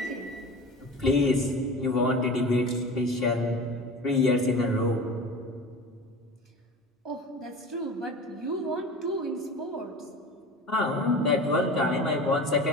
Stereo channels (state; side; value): normal; both; correlation 0.34